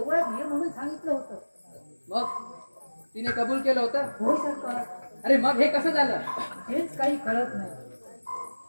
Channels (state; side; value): inverted; both; correlation -1.00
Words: ये म्हणून सांगितलं होतं. मग तिने कबूल केलं होतं? हो सरकार. अरे मग हे कसं झालं? हेच काही कळत नाही.